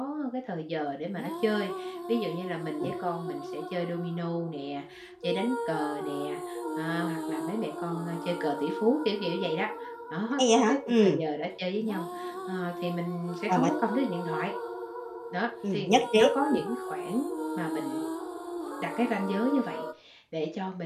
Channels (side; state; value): both; identical; correlation 1.00